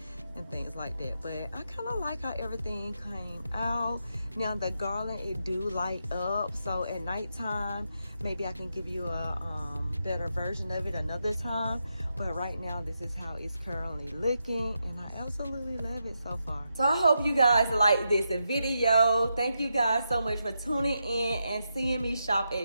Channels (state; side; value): inverted; both; correlation -0.85